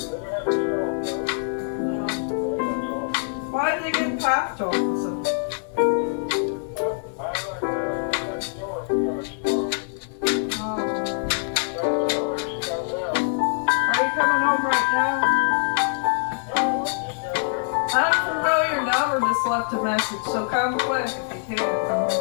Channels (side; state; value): right; silent; 62 dB below the other